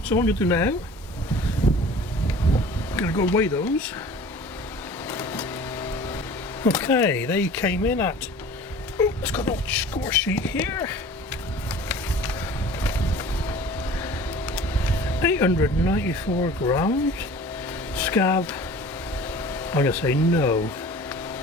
So what I'm going to do now, I'm going to go weigh those. Okay, they came in at, let's got a little score sheet here. 894 grams. Scab, I'm going to say no.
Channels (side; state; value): both; normal; correlation 0.44